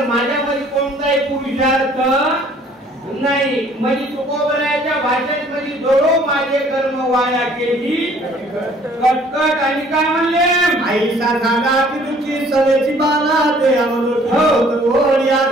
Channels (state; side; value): normal; both; correlation 0.57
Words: माझ्यामध्ये कोणताही पुरुषार्थ नाही. म्हणजे तुकोबराच्या भाषेत म्हणजे दोडो माझे कर्म वाया केली कटकट. आणि काय म्हणले? आईसा झाला की तुझी सवेची बाला ते अमृत हो